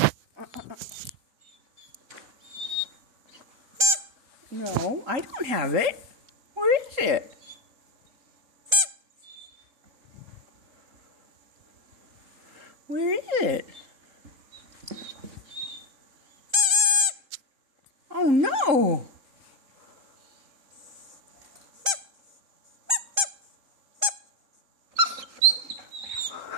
No, I don't have it. Where is it? Where is it? Oh no!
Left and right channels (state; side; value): late; left; 3.8 ms